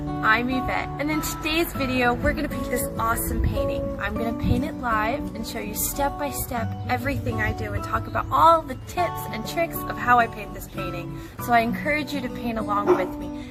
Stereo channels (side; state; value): both; identical; correlation 1.00